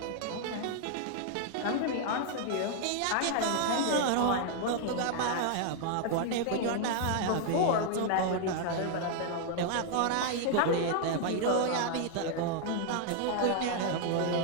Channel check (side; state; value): both; different; correlation 0.00